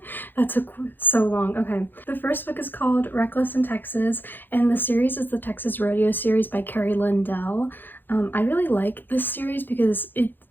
That took so long. Okay. The first book is called Reckless in Texas, and the series is the Texas Rodeo series by Carrie Lindell. I really like this series because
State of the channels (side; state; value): right; late; 0.093 ms